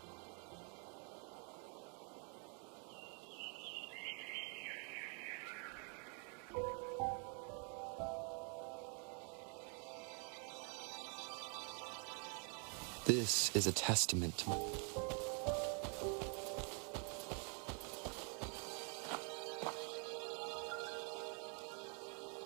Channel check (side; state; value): left; quieter; 39.7 dB